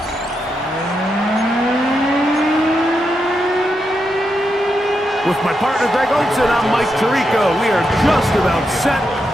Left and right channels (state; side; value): normal; both; correlation 0.84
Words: With my partner Greg Olson, I'm Mike Tirico. We are just about set